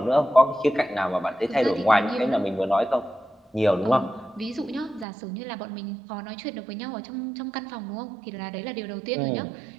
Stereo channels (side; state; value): left; drops out; at 5.1 s